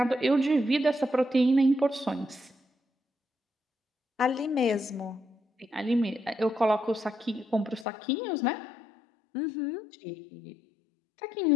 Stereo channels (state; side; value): drops out; right; at 7.9 s